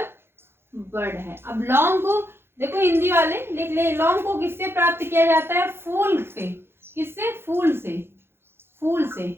बर्ड है। अब लौंग को देखो, हिंदी वाले लिख ले, लौंग को किससे प्राप्त किया जाता है, फूल से। किससे, फूल से।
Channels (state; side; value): late; left; 0.11 ms